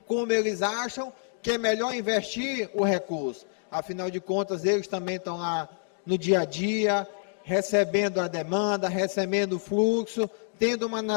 como eles acham que é melhor investir o recurso. Afinal de contas, eles também estão lá no dia a dia, recebendo a demanda, recebendo o fluxo, tendo uma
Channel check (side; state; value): right; silent; digital silence